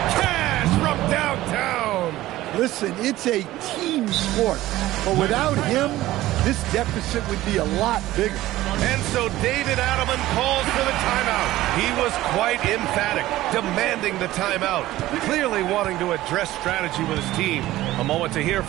Cash from downtown. Listen, it's a team sport, but without him, this deficit would be a lot bigger. And so David Adelman calls for the timeout. He was quite emphatic, demanding the timeout, clearly wanting to address strategy with his team. A moment to hear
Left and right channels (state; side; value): quieter; left; 16.0 dB